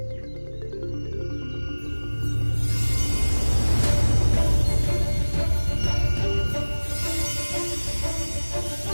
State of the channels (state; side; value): inverted; both; correlation -1.00